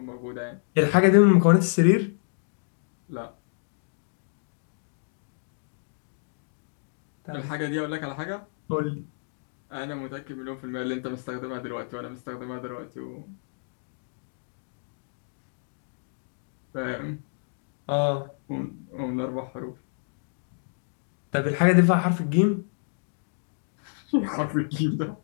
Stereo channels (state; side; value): silent; right; digital silence